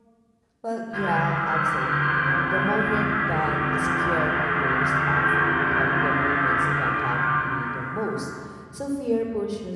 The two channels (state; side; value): identical; both; correlation 1.00